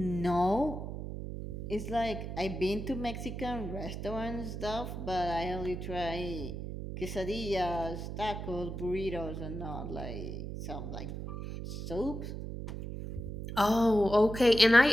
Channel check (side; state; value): right; noise; hum, 7 dB below the sound